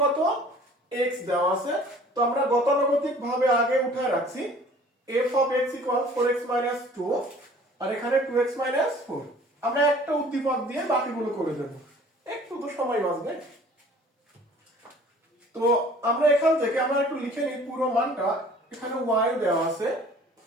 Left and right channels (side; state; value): both; normal; correlation 0.50